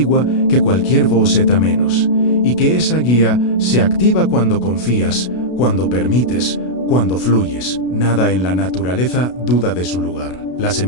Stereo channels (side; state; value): right; late; 32 ms